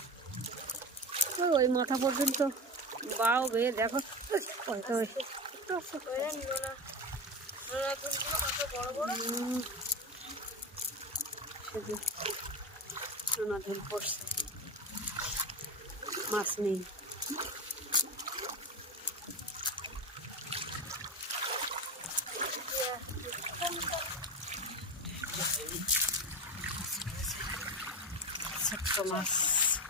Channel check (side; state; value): both; normal; correlation 0.21